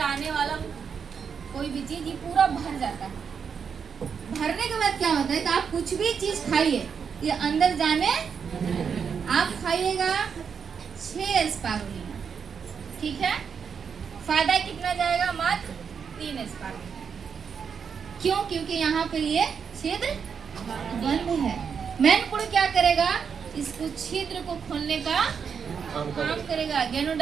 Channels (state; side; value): quieter; left; 6.6 dB